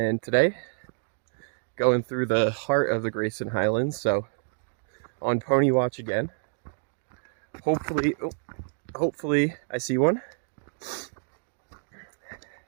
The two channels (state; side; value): silent; left; digital silence